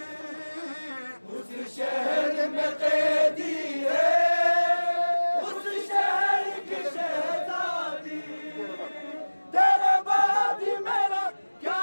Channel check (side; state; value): both; inverted; correlation -1.00